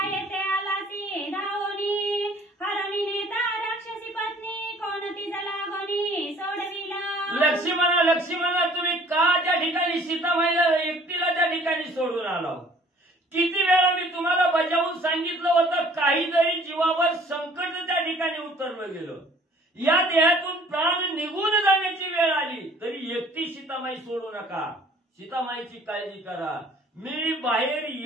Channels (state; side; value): normal; both; correlation 0.54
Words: येते आला ती धावोनी हरणी नेता राक्षसी पत्नी कोणती जलागोनी सोडविला. लक्ष्मणा तुम्ही का त्या ठिकाणी सीतामाईला एकटीला त्या ठिकाणी सोडून आला? किती वेळा मी तुम्हाला बजावून सांगितलं होतं, काही जरी जीवावर संकट त्या ठिकाणी उतरलं गेलं, या देहातून प्राण निघून जाण्याची वेळ आली तरी एकटी सीतामाई सोडू नका, सीतामाईची काळजी करा. मी बाहेर